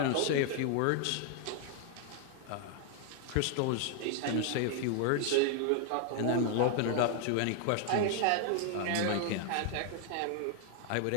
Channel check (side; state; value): both; different; correlation 0.00